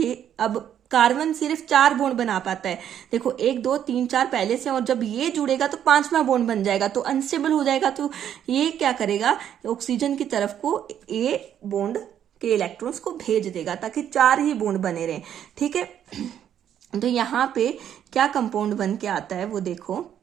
अब कार्बन सिर्फ 4 बॉन्ड बना पाता है। देखो 1 2 3 4 पहले से, और जब ये जुड़ेगा तो 5वां बॉन्ड बन जाएगा, तो अनस्टेबल हो जाएगा। तो ये क्या करेगा, ऑक्सीजन की तरफ को ए बॉन्ड के इलेक्ट्रॉन्स को भेज देगा ताकि 4 ही बॉन्ड बने रहें। ठीक है, तो यहाँ पे क्या कंपाउंड बन के आता है वो देखो,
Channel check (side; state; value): left; quieter; 9.8 dB